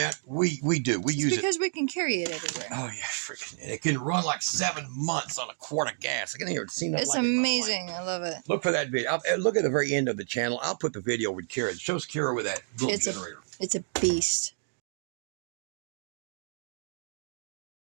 we do. We use it. Because we can carry it everywhere. Oh, yeah, freaking. It can run like 7 months on a quart of gas. I can hear it. Seen that. It's like amazing. I love it. Look for that video. Look at the very end of the channel. I'll put the video with Kira. It shows Kira with that little generator. It's a beast.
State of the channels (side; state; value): left; silent; digital silence